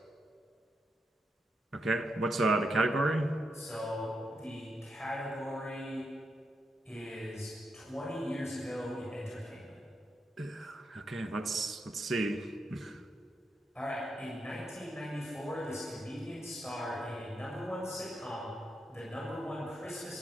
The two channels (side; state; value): both; normal; correlation 0.83